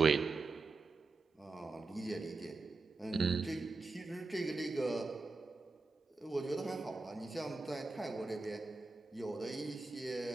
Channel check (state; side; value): quieter; left; 3.7 dB